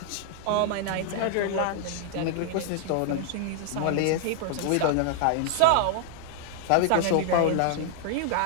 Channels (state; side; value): different; both; correlation 0.00